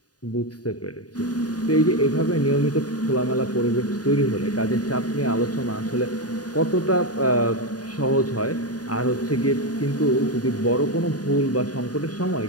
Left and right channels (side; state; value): right; late; 0.68 ms